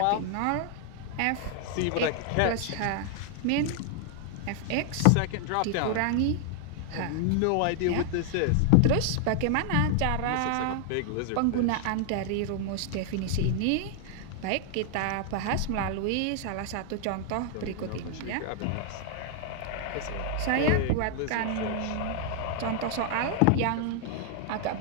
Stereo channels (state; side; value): different; both; correlation 0.00